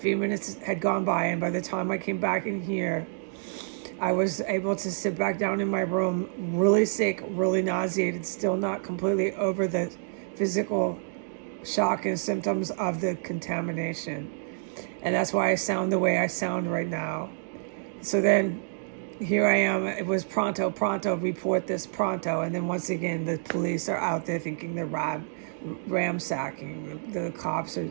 minutes had gone by, and by the time I came back in here, I was able to sit back down in my room, really sick, really nauseated, still not completely over the physical shock and symptoms of the contamination. And that's why I sound the way I sound right now. So then here I am. It was pronto, report this pronto. And then once again, the police are out there thinking they're ransacking. The cops are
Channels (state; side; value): silent; left; digital silence